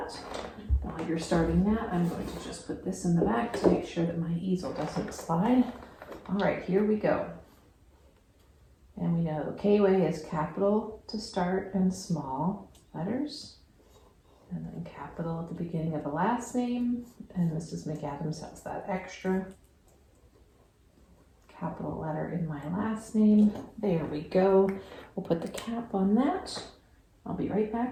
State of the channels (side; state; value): both; identical; correlation 1.00